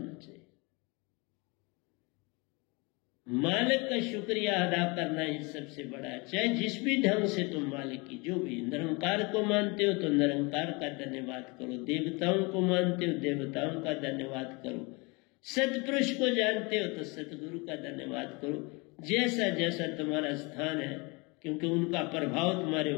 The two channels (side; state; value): right; quieter; 28.0 dB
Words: चाहिए। मालिक का शुक्रिया अदा करना ही सबसे बड़ा है। चाहे जिस भी ढंग से तुम मालिक की, जो भी निरंकार को मानते हो तो निरंकार का धन्यवाद करो, देवताओं को मानते हो देवताओं का धन्यवाद करो, सतपुरुष को जानते हो तो सतगुरु का धन्यवाद करो, जैसा जैसा तुम्हारा स्थान है, क्योंकि उनका प्रभाव तुम्हारे